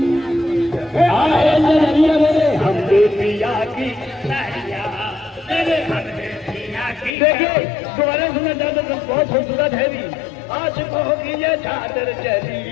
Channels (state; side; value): drops out; right; at 7.1 s